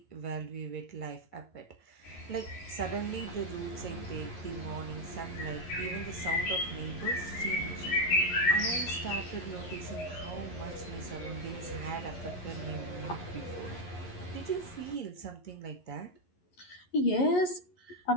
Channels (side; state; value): right; late; 11 ms